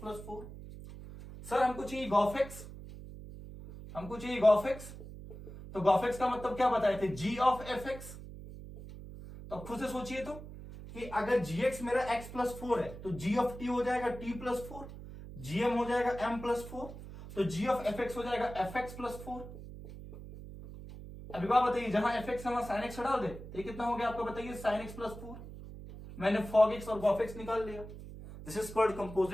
सर हमको चाहिए gauf x, हमको चाहिए gauf x, तो gauf x का मतलब क्या बताए थे, g of fx। तो खुद से सोचिए तो कि अगर gx मेरा x+4 है तो g of t हो जाएगा t+4, gm हो जाएगा m+4, तो g of fx हो जाएगा fx+4। अभी बात बताइए, जहां fx है वहां sin x डाल दे तो ये कितना हो गया आपको बताइए, sin x+4। मैंने fog x और gauf x निकाल लिया। This is called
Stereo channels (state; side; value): noise; right; hum, 13 dB below the sound